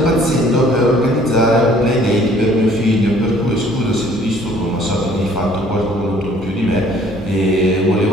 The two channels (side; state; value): both; normal; correlation 0.57